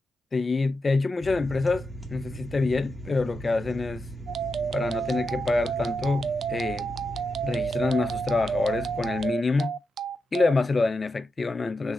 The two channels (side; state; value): both; normal; correlation 0.87